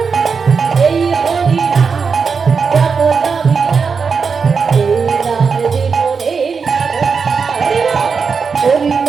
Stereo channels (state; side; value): quieter; left; 5.5 dB